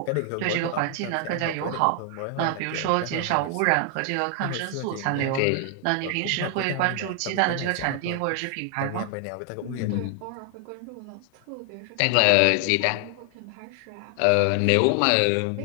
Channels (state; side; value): different; both; correlation 0.00